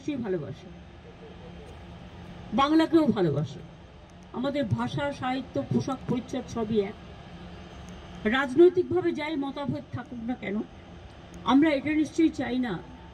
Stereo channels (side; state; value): both; identical; correlation 1.00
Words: ভালোবাসে বাংলাকেও ভালোবাসে আমাদের ভাষা সাহিত্য পোশাক পরিচ্ছদ সবই এক রাজনৈতিকভাবে যাই মতভেদ থাকুক না কেন আমরা এটা নিশ্চয়ই চাই না